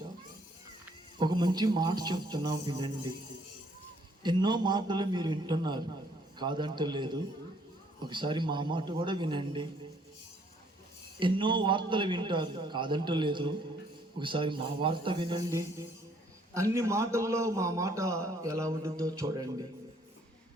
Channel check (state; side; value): normal; both; correlation 0.64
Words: ఒక మంచి మాట చెప్తున్నాం, వినండి. ఎన్నో మాటలు మీరు వింటున్నారు, కాదంటలేదు. ఒకసారి మా మాట కూడా వినండి. ఎన్నో వార్తలు వింటారు, కాదంటలేదు. ఒకసారి మా వార్త వినండి. అన్ని మాటల్లో మా మాట ఎలా ఉంటుందో చూడండి.